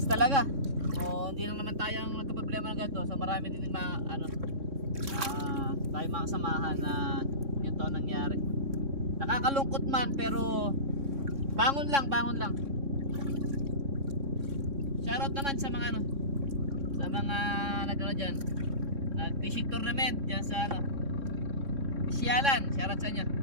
talaga. So hindi lang naman tayo ang nagka-problema ng ganito. So marami din mga ano tayo mga kasamahan na yun to nangyari. Nakakalungkot man pero bangon lang, bangon lang. Shoutout naman sa mga ano, sa mga nagano diyan. Nag-fishing tournament diyan sa ano, Sialan. Shoutout sa inyo.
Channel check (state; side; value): late; left; 3.6 ms